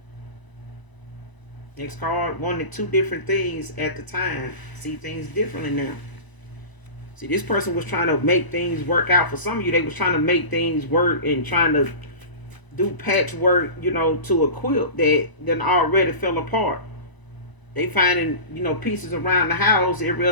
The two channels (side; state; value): right; late; 1.0 ms